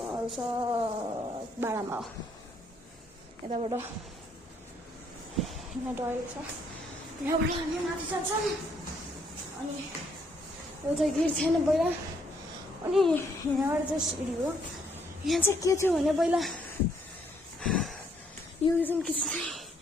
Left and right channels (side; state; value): both; normal; correlation 0.69